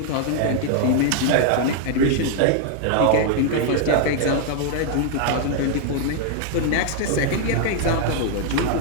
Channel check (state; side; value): different; both; correlation 0.00